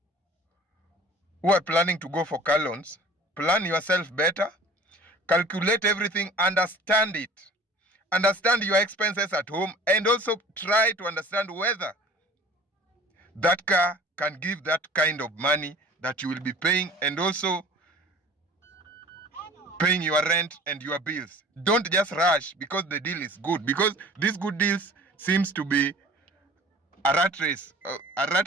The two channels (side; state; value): both; normal; correlation 0.46